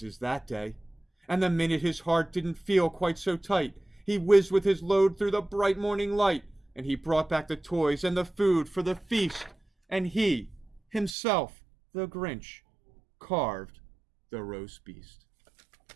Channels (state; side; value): drops out; left; at 11.2 s